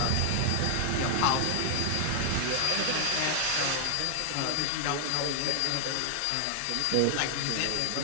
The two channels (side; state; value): both; different; correlation 0.00